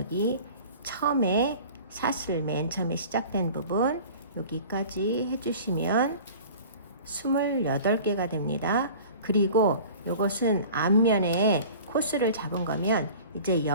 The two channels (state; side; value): inverted; both; correlation -0.42